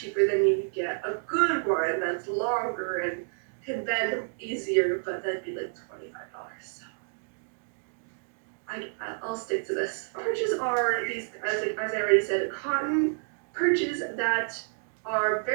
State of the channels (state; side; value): silent; left; digital silence